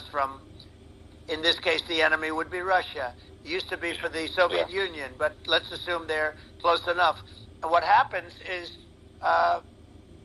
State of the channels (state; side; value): identical; both; correlation 1.00